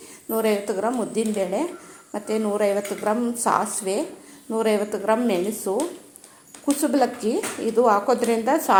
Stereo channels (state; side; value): identical; both; correlation 1.00